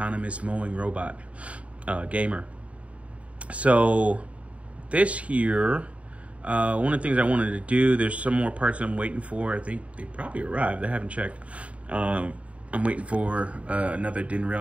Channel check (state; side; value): late; left; 0.065 ms